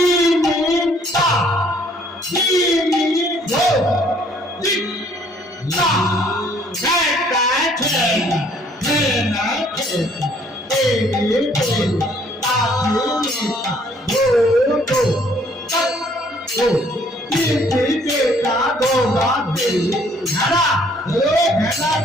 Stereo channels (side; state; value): both; normal; correlation 0.62